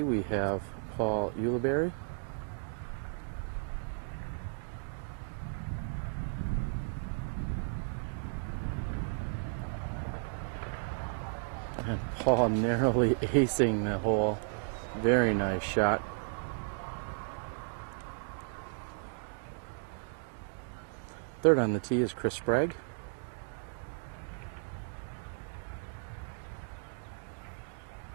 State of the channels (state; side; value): silent; left; digital silence